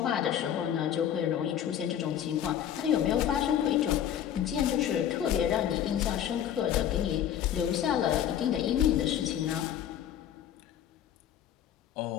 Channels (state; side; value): quieter; right; 10.1 dB